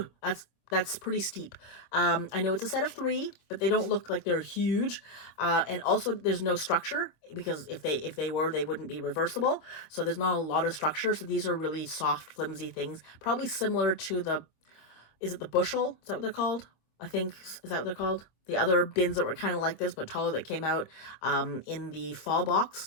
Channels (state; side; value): late; right; 25 ms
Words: That's pretty steep. I know it's a set of 3, but they don't look like they're huge. And also there's no structure because if they were, they wouldn't be reversible. So there's not a lot of structure. So these are really soft, flimsy things, probably similar to is it the bushel? Is that what they're called? I think, is that what they're called? The other bins that were kind of like this, but taller, that came out in the fall box,